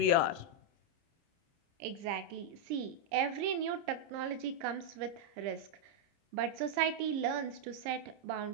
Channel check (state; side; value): late; left; 30 ms